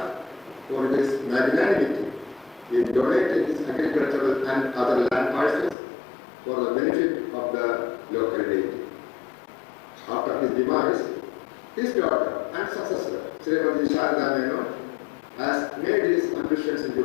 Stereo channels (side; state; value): right; drops out; at 5.8 s